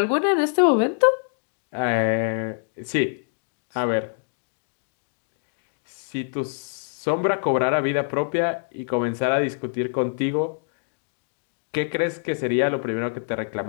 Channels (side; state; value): right; silent; digital silence